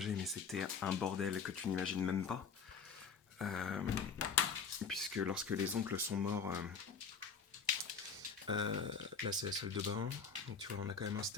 mais c'était un bordel que tu n'imagines même pas. Euh, Puisque lorsque les oncles sont morts, là, c'est la salle de bain. Donc tu vois, on a quand même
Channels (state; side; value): quieter; right; 5.8 dB